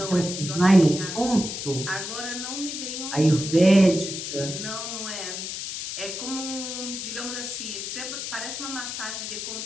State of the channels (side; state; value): left; noise; hiss, 6 dB below the sound